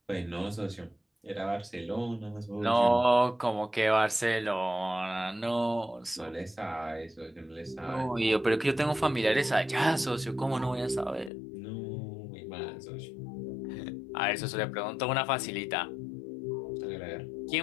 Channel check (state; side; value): drops out; right; at 11.3 s